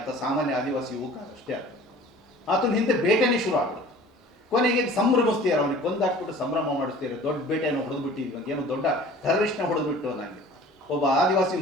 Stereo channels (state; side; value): normal; both; correlation 0.46